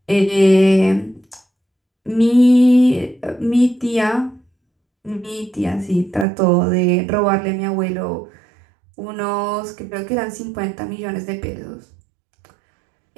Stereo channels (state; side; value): drops out; left; at 6.2 s